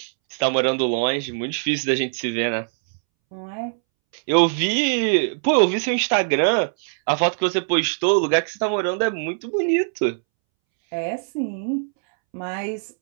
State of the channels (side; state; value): left; silent; 64 dB below the other